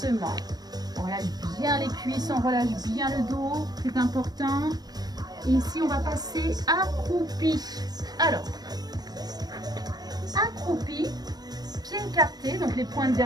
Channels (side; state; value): left; late; 0.19 ms